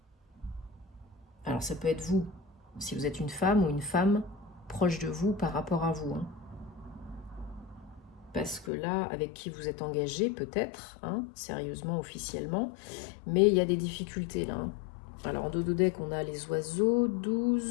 Alors ça peut être vous, si vous êtes une femme ou une femme proche de vous par rapport à vous. Parce que là, avec qui vous êtes engagé, peut-être, sérieusement, officiellement, mais il y a des difficultés là. Alors en dodo-deck, on a les oiseaux,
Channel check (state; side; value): drops out; right; at 8.7 s